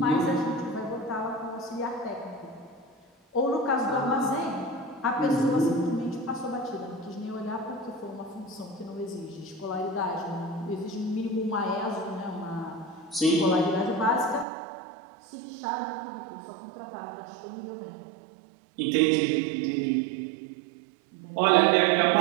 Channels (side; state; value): left; drops out; at 14.5 s